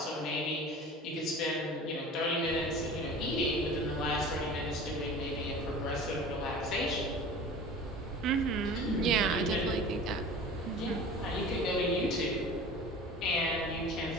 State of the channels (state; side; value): normal; both; correlation 0.39